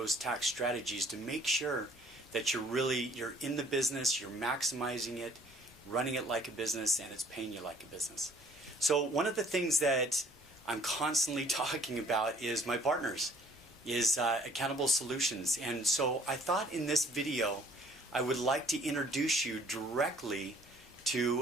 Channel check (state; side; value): normal; both; correlation 0.58